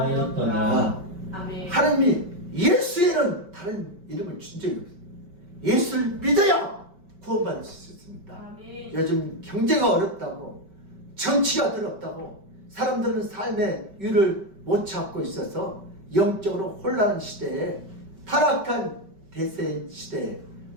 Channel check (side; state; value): left; late; 5.2 ms